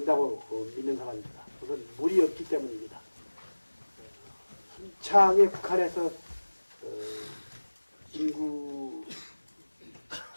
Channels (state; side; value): inverted; both; correlation -1.00